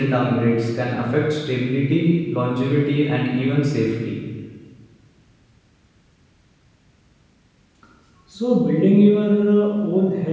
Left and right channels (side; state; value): both; identical; correlation 1.00